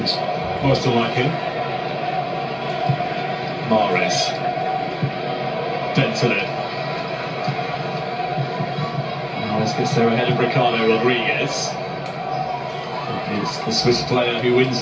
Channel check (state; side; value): identical; both; correlation 1.00